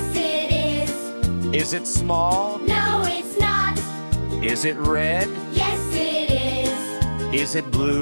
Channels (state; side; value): inverted; both; correlation -1.00